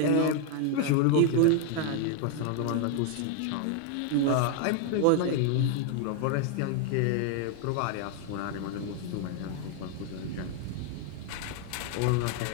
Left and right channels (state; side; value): different; both; correlation 0.00